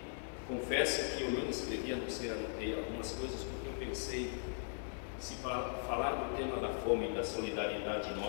confesso que eu não escrevi, a não ser anotei algumas coisas, porque eu pensei, se falar do tema da fome e da solidariedade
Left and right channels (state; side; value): silent; right; 52 dB below the other